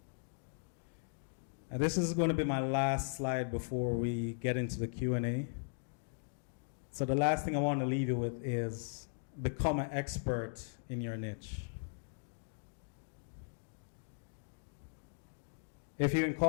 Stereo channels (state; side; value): silent; right; digital silence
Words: And this is going to be my last slide before we get into the Q&A. So the last thing I want to leave you with is become an expert in your niche. If you're in